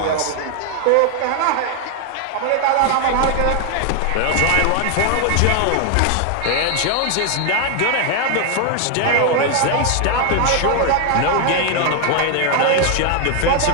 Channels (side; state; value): both; different; correlation 0.00